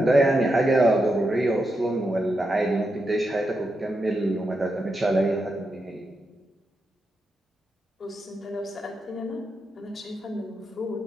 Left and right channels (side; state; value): both; normal; correlation 0.86